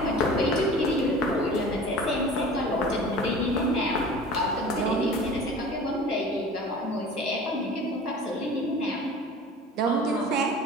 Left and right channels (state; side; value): normal; both; correlation 0.41